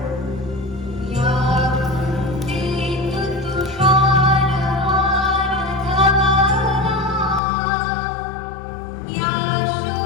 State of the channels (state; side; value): drops out; right; at 7.4 s